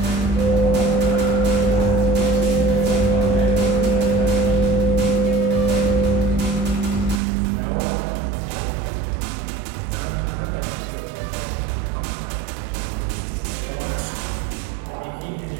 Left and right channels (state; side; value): drops out; left; at 7.2 s